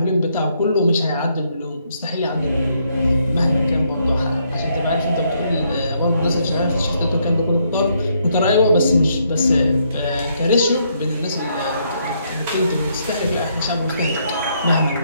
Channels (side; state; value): both; inverted; correlation -0.73